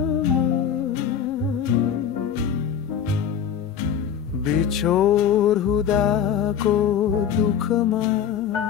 बिछोड हुँदाको दुःखमा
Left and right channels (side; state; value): right; quieter; 8.5 dB